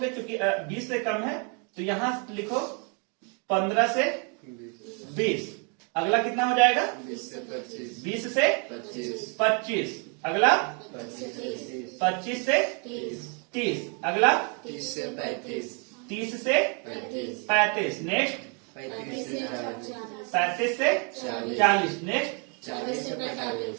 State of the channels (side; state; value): left; quieter; 36.3 dB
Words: क्योंकि 20 से कम है तो यहाँ लिखो 15 से 20। अगला कितना हो जाएगा, 20 से 25। अगला 25 से 30। अगला 30 से 35। नेक्स्ट 35 से 40। नेक्स्ट